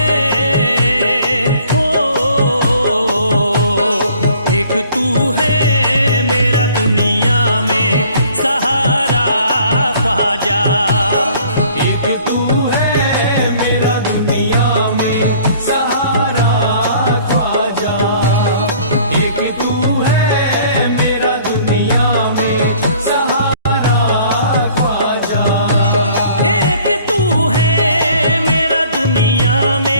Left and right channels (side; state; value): both; inverted; correlation -0.55